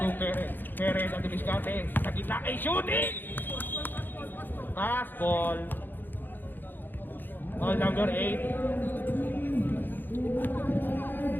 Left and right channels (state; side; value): late; right; 0.092 ms